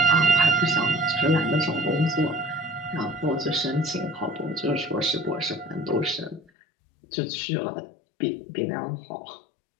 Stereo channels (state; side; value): drops out; right; at 6.4 s